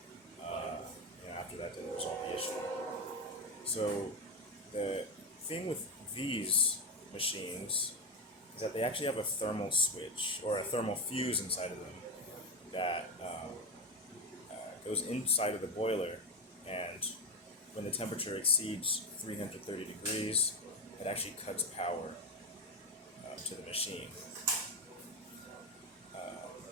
after that didn't resolve the issue. So the thing with these machines is that they actually have a thermal switch or a thermal fuse inside of them that goes inside of the boiler, and when the temperature exceeds 330 degrees, it actually cuts power to the machine.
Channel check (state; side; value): normal; both; correlation 0.14